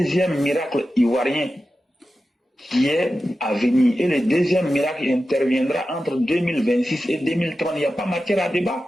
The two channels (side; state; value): both; normal; correlation 0.92